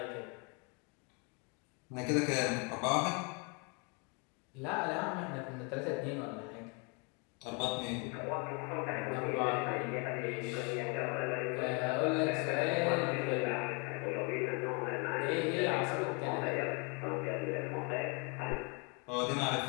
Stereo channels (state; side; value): quieter; right; 33.1 dB